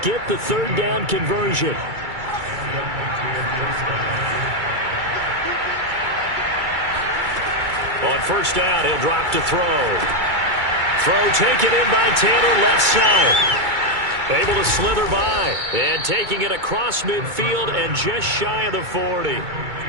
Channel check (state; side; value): late; left; 2.3 ms